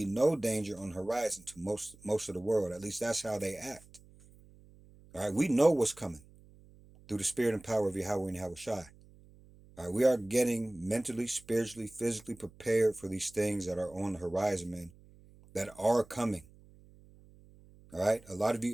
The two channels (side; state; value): right; noise; hum, 24 dB below the sound